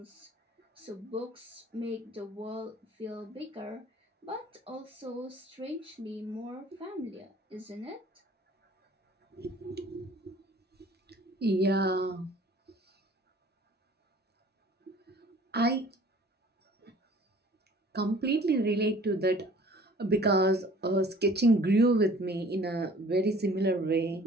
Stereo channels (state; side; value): normal; both; correlation 0.51